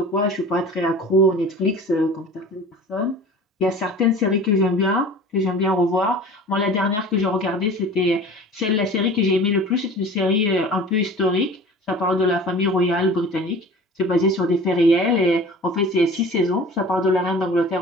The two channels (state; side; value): normal; both; correlation 0.41